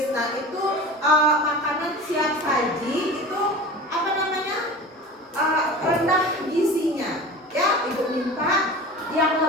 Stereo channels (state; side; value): normal; both; correlation 0.35